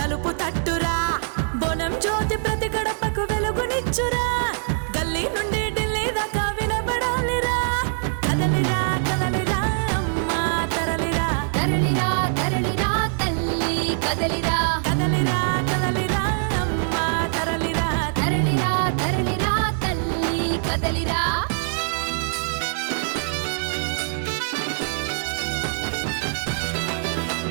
తలుపు తట్టురా బోనం జ్యోతి ప్రతి గడపకు వెలుగునిచ్చురా గల్లీ నుండి ఢిల్లీ దాకా వినబడాలిరా కదలిరా కదలిరా అమ్మా తరలిరా తరలిరా తరలిరా తల్లి కదలిరా కదలిరా కదలిరా అమ్మా తరలిరా తరలిరా తరలిరా తల్లి కదలిరా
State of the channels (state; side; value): silent; left; digital silence